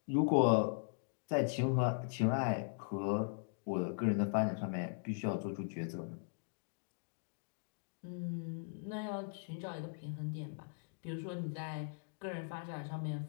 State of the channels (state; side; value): silent; right; digital silence